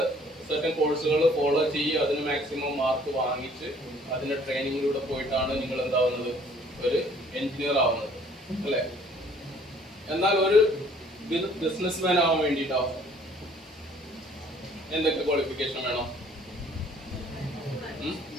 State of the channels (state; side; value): normal; both; correlation 0.58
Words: സർട്ടൻ കോഴ്സുകൾ ഫോളോ ചെയ്യുക, അതിന് മാക്സിമം മാർക്ക് വാങ്ങിച്ച് അതിന്റെ ട്രെയിനിങ്ങിലൂടെ പോയിട്ടാണ് നിങ്ങൾ എന്താവുന്നത്, ഒരു എഞ്ചിനീയർ ആവുന്നത്, അല്ലെ? എന്നാൽ ഒരു ബിസിനസ്മാൻ ആവാൻ വേണ്ടിയിട്ടോ എന്തൊക്കെ ക്വാളിഫിക്കേഷൻ വേണം?